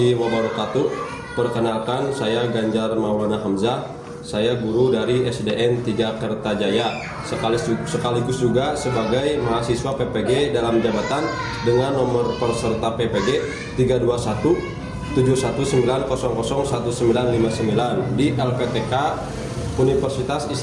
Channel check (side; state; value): both; identical; correlation 1.00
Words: wabarakatuh. Perkenalkan, saya Ganjar Maulana Hamzah. Saya guru dari SDN 3 Kertajaya, sekaligus juga sebagai mahasiswa PPG dalam jabatan dengan nomor peserta PPG 32171900199 di LPTK Universitas